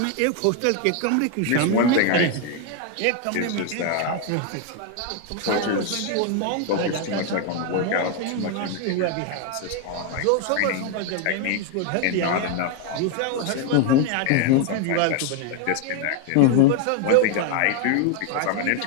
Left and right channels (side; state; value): both; different; correlation 0.01